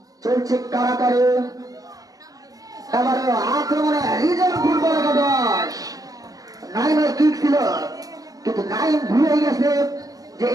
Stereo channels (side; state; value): left; late; 0.17 ms